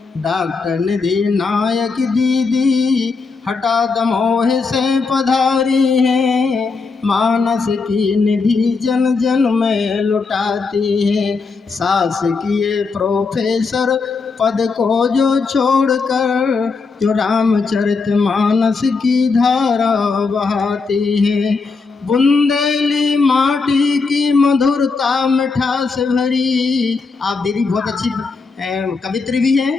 डॉक्टर निधि नायक दीदी हठा दमोह से पधारी हैं, मानस की निधि जन जन में लुटाती हैं। शासकीय प्रोफेसर पद को जो छोड़कर जो रामचरितमानस की धारा बहाती है। बुंदेली माटी की मधुरता मिठास भरी। आप दीदी बहुत अच्छी कवित्री भी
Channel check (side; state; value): right; quieter; 4.5 dB